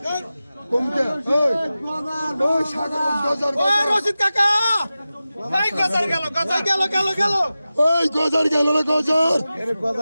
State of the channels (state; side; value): inverted; both; correlation -0.95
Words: কমতে ওই সাগর গজার রশিদ কাকা ভাই গজার গেল ওই গজার গেল না গজার এর